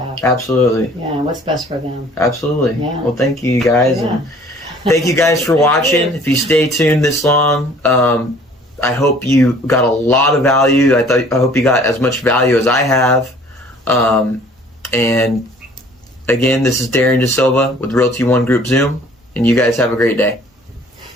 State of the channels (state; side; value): normal; both; correlation 0.53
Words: Absolutely. Yeah, what's best for them. Absolutely. Yeah. Well, thank you guys, Yeah. and thank you guys for watching. If you stay tuned this long, I hope you got a lot of value. I hope you got as much value as I have, and again, this is Darrin Desilva with Realty One Group Zoom, and you guys have a great day.